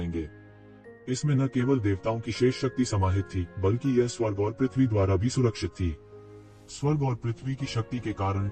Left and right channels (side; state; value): both; identical; correlation 1.00